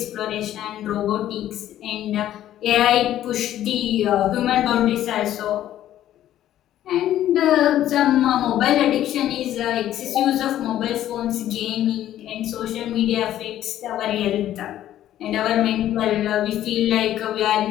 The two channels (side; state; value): right; quieter; 12.4 dB